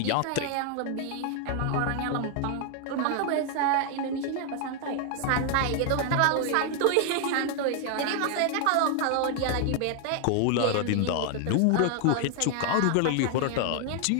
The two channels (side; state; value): both; different; correlation 0.00